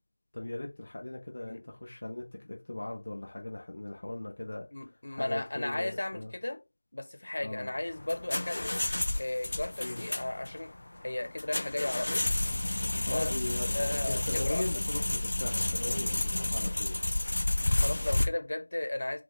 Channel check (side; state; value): both; inverted; correlation -1.00